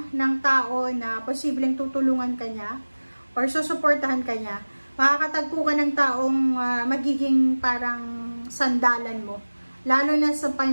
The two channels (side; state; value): both; inverted; correlation -1.00